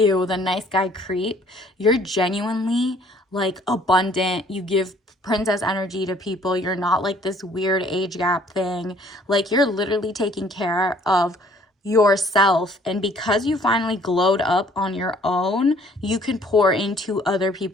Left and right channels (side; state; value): both; normal; correlation 0.58